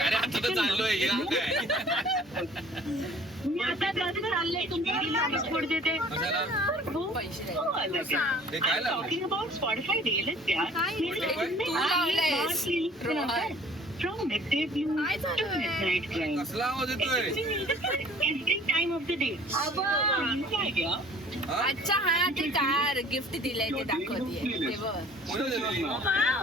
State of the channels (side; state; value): both; normal; correlation 0.51